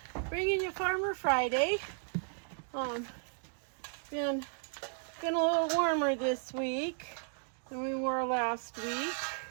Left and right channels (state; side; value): silent; left; 55 dB below the other